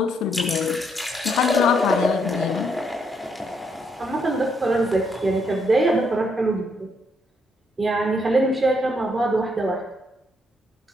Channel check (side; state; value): both; normal; correlation 0.74